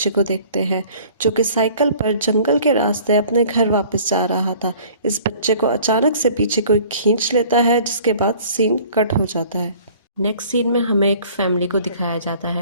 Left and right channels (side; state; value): both; inverted; correlation -0.51